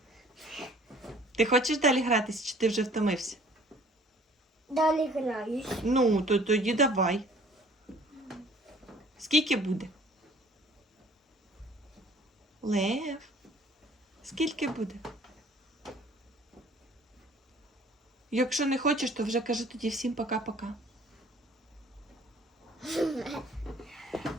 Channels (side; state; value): both; normal; correlation 0.54